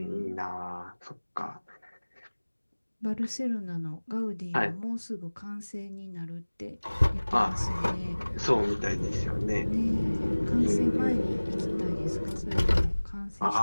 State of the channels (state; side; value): inverted; both; correlation -1.00